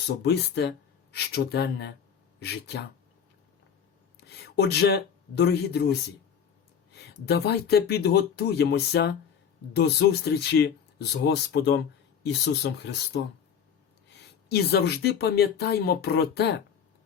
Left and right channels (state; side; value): quieter; right; 7.6 dB